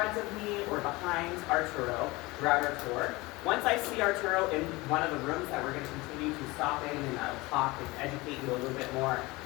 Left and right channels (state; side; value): quieter; right; 22.3 dB